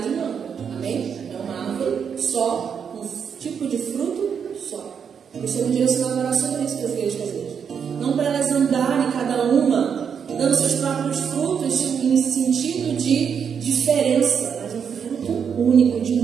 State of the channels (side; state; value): left; quieter; 7.1 dB